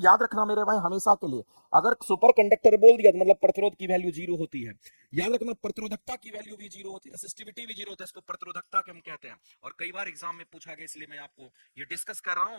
याद रखना मेरे भाई हमेशा के लिए। अगर सुपर कंडक्टर बोल दिया तो मतलब प्रतिरोध की वैल्यू जीरो होती है। याद रखना प्रतिरोधकता की वैल्यू भी जीरो होती है, रेसिस्टिविटी भी जीरो होता है, इसको प्रतिरोधकता हम कहते हैं। और कई बार एग्जाम में पूछा गया, इसलिए मैं आपको ये डिस्कस कर रहा हूं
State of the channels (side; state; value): both; inverted; correlation -1.00